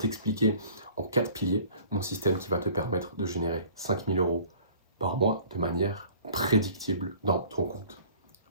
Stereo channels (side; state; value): both; inverted; correlation -0.50